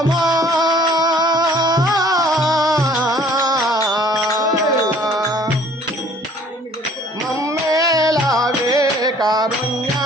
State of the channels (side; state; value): both; normal; correlation 0.55